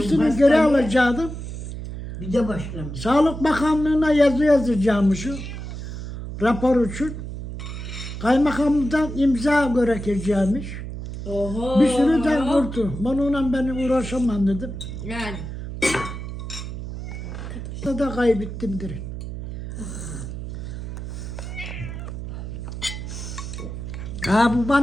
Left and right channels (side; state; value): right; noise; hum, 7 dB below the sound